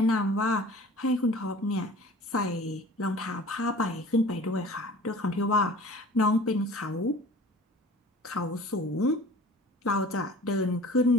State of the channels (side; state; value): both; normal; correlation 0.44